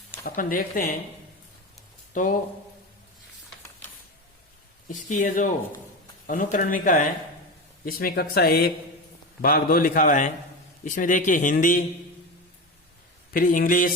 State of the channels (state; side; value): normal; both; correlation 0.22